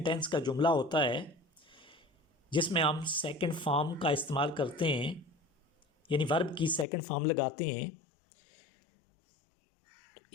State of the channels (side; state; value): right; drops out; at 6.9 s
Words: टेंस का जुमला होता है, जिसमें हम सेकंड फॉर्म का इस्तेमाल करते हैं, यानी वर्ब की सेकंड फॉर्म लगाते हैं।